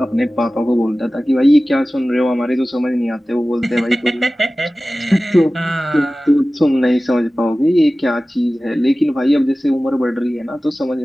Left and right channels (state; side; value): normal; both; correlation 0.96